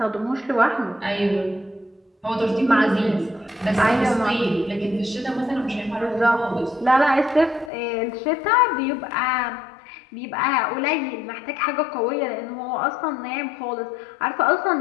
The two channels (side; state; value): right; drops out; at 7.7 s